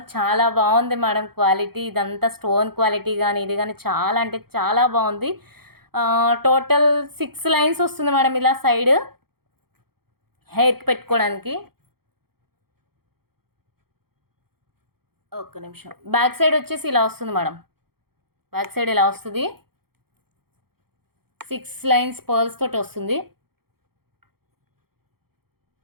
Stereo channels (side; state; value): left; late; 0.95 ms